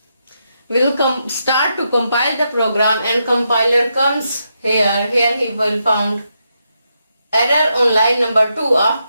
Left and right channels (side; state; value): both; inverted; correlation -0.82